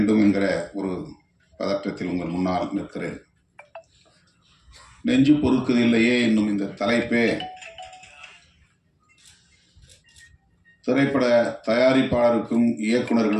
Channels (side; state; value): both; identical; correlation 1.00